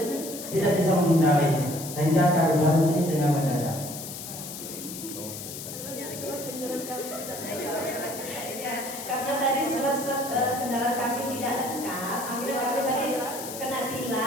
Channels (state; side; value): noise; left; hiss, 9 dB below the sound